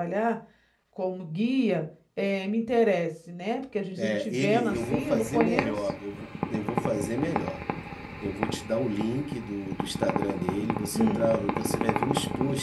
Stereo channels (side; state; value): both; identical; correlation 1.00